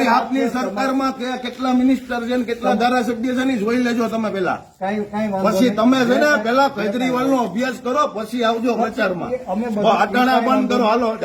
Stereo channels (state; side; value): identical; both; correlation 1.00